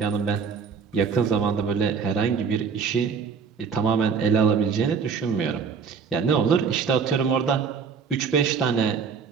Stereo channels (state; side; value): quieter; left; 5.9 dB